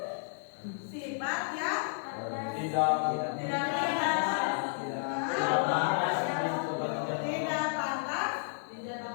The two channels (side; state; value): right; silent; digital silence